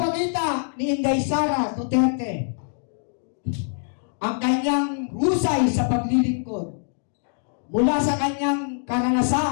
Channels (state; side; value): silent; right; digital silence